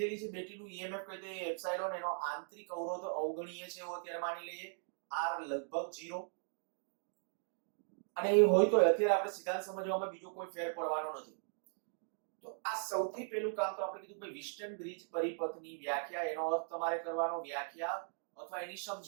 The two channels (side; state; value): left; silent; digital silence